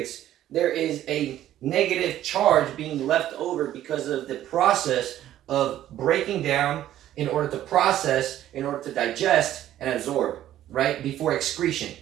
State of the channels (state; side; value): quieter; left; 12.6 dB